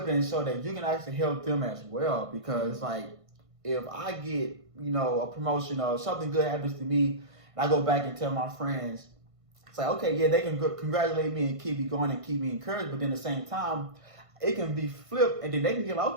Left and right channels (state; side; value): late; left; 1.5 ms